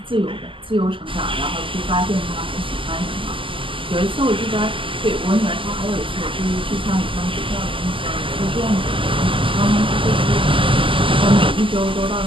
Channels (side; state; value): left; late; 0.25 ms